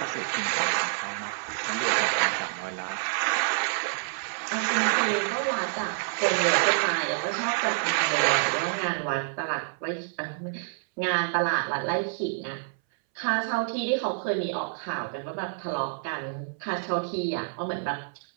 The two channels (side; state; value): left; silent; 59 dB below the other